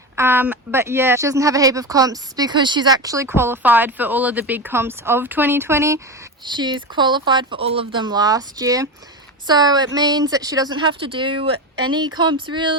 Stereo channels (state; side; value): normal; both; correlation 0.20